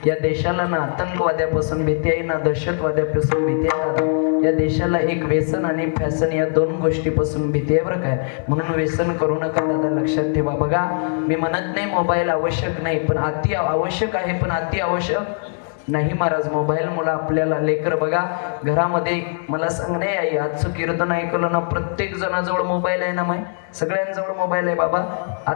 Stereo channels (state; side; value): silent; right; 65 dB below the other